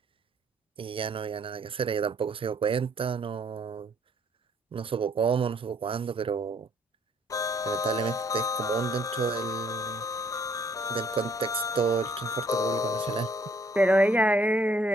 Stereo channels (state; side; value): normal; both; correlation 0.64